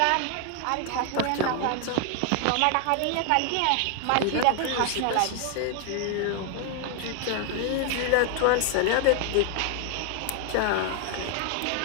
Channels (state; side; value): different; both; correlation 0.00